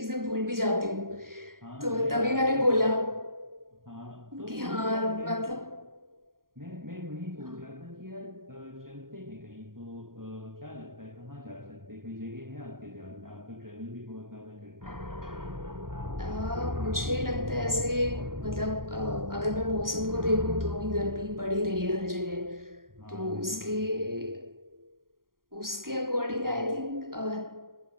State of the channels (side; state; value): left; late; 0.92 ms